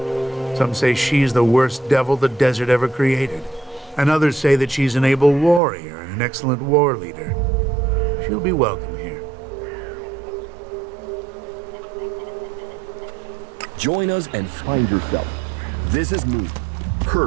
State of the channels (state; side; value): drops out; left; at 5.6 s